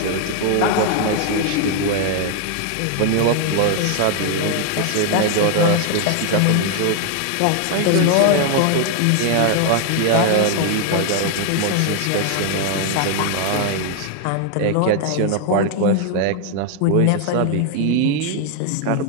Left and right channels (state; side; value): different; both; correlation 0.00